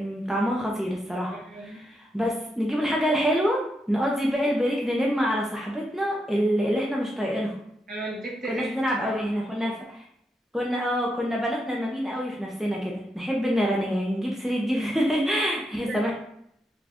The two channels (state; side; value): normal; both; correlation 0.82